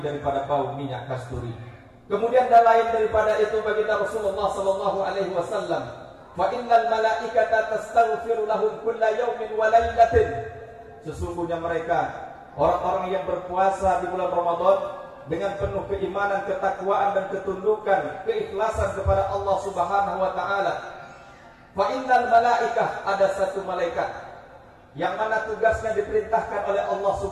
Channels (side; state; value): both; identical; correlation 1.00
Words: bau minyak kasturi. Kemudian dan lain daripada itu baginda Rasulullah sallallahu alaihi wasallam, fa innal malaikata tastaghfiru lahum kulla yawmin wa lailatin. sesungguhnya mereka orang-orang yang berpuasa di bulan Ramadan dengan penuh keimanan, ketakwaan dan ketundukan, keikhlasan kepada Allah Subhanahu wa taala. Fa innal malaikah, ada satu malaikat yang mana tugasnya diperintahkan oleh Allah